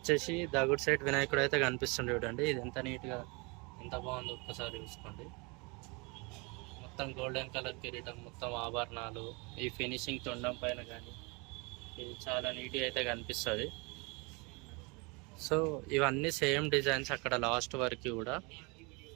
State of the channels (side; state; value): left; quieter; 29.1 dB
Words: దగుడ్ సైడ్ వినాయకుడు అయితే కనిపిస్తుంది చూడండి. ఇది ఎంత నీట్గా, ఎంత బాగుందో ఒక్కసారి చూసుకోండి. మొత్తం గోల్డెన్ కలర్ కిరీటం, మొత్తం ఆభరణాలు, ఈ ఫినిషింగ్ తొండం పైన కానీ ఇది చాలా నీట్గా అయితే కనిపిస్తుంది. సో ఇవన్నీ సేమ్ డిజైన్స్ అక్కడ లాస్ట్ వరకు కూడా.